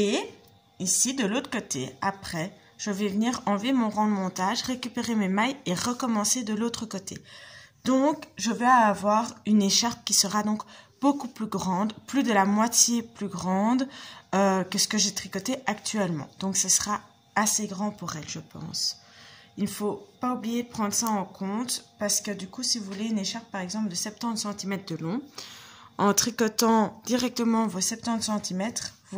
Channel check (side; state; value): both; identical; correlation 1.00